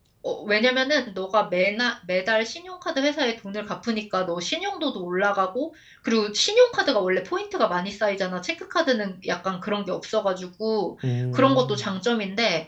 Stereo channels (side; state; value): both; identical; correlation 1.00